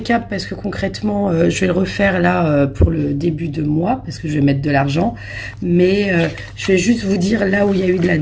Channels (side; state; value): both; identical; correlation 1.00